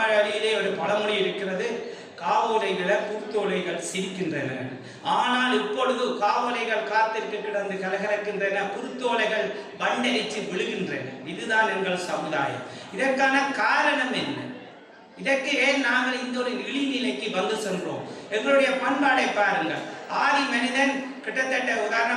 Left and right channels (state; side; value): identical; both; correlation 1.00